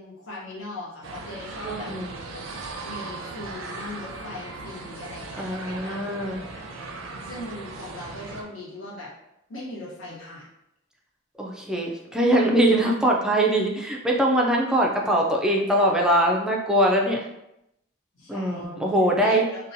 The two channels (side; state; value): both; normal; correlation 0.31